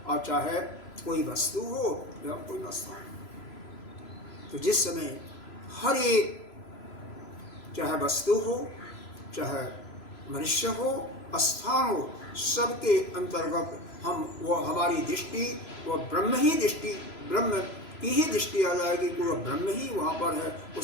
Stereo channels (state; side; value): late; right; 3.0 ms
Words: और चाहे कोई वस्तु हो या कोई वस्तु। तो जिस समय हर एक, चाहे वस्तु हो, चाहे मनुष्य हो, स्थान हो, सबके अंतर्गत हम वो हमारी दृष्टि वो ब्रह्म ही दृष्टि, ब्रह्म की ही दृष्टि आ जाएगी कि वो ब्रह्म ही वहाँ पर है,